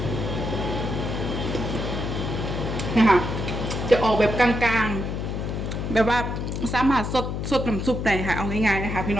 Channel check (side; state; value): left; noise; hum, 3 dB below the sound